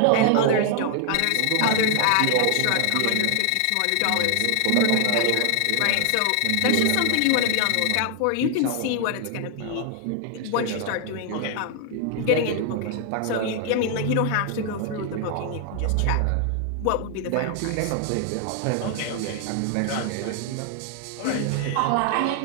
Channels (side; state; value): both; different; correlation 0.00